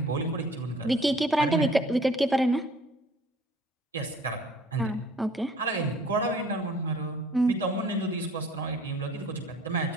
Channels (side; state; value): both; normal; correlation 0.52